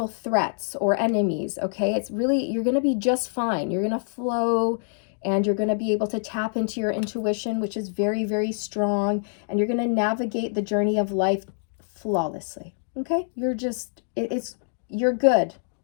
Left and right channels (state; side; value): silent; right; digital silence